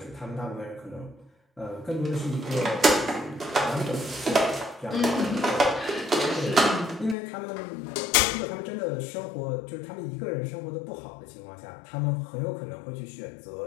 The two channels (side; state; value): right; drops out; at 7.2 s